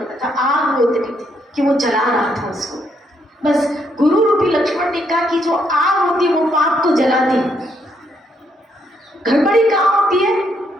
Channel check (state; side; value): normal; both; correlation 0.74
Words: था, आग वो इतनी थी कि वो जला रहा था उसको। बस गुरु रूपी लक्ष्मण रेखा की जो आग होती है वो पाप को जलाती है। गड़बड़ी कहाँ होती है